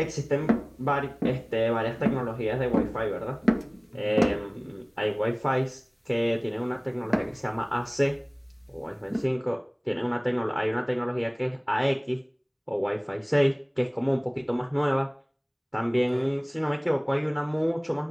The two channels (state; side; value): identical; both; correlation 1.00